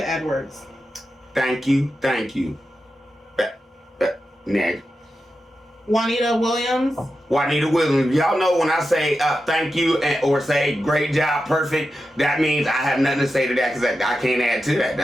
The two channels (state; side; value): normal; both; correlation 0.90